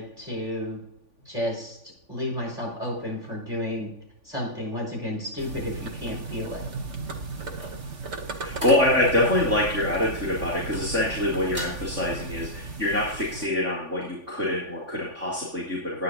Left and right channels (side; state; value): left; late; 3.5 ms